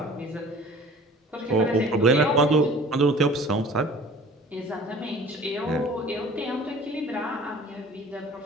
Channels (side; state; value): both; normal; correlation 0.47